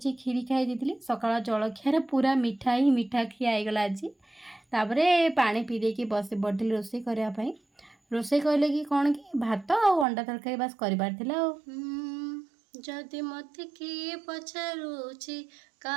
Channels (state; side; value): drops out; left; at 10.1 s